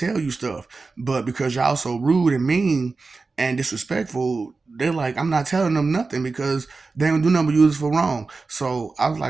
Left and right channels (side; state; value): left; quieter; 4.0 dB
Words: you stuff, but because y'all so rude and mean and disrespectful, they're like, I'm not telling them nothing because they don't do nothing but use it for wrong. So I was